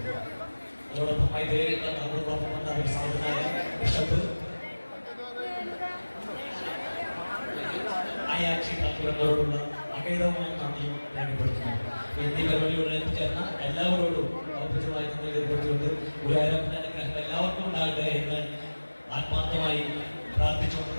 അതോടൊപ്പം മൈത്രിയിൽ നമ്മളോടൊപ്പം വന്ന ഒരു സാധുനായ ബിഷപ്പ് ആയാക്ഷി താക്കൂരങ്ങളോടുള്ള അകേതമായ നന്ദിയും രേഖപ്പെടുത്തുന്നു. എന്നീ പരിപാടിയോട് എത്തിച്ചേർന്ന എല്ലാവരോടും ഔപചാരികമായി നന്ദി രേഖപ്പെടുത്തിക്കൊണ്ട് ഗുരുവായൂരപ്പന്റെ അനുഗ്രഹം എല്ലാവർക്കും ഉണ്ടാകട്ടെ എന്ന് ആത്മാർത്ഥമായി പ്രാർത്ഥിച്ചുകൊണ്ട്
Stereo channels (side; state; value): both; inverted; correlation -1.00